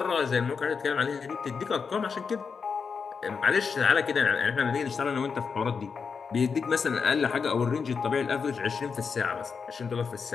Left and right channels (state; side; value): quieter; right; 5.6 dB